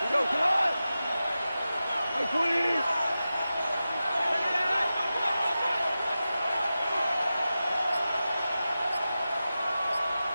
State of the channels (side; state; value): both; inverted; correlation -0.93